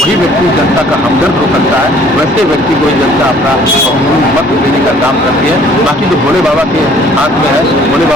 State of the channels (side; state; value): both; normal; correlation 0.56